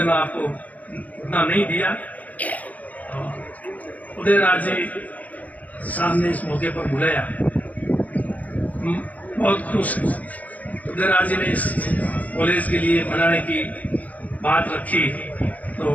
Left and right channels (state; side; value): late; right; 0.076 ms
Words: में आपको उतना नहीं दिया। उदयराज जी साहब ने इस मौके पर बुलाया, बहुत खुश हूँ। उदयराज जी ने इस कॉलेज के लिए बनाने की बात रखी, तो